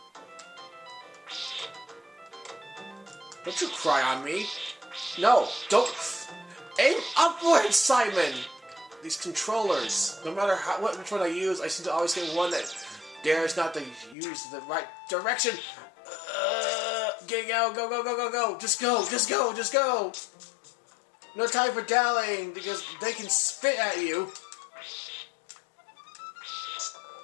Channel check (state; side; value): drops out; right; at 14.2 s